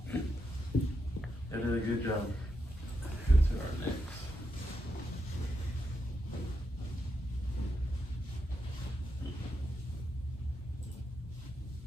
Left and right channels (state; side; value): normal; both; correlation 0.84